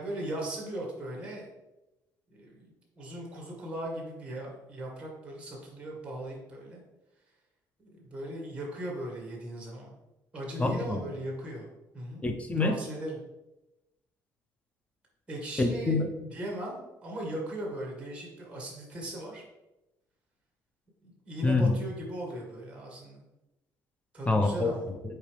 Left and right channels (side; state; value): both; normal; correlation 0.65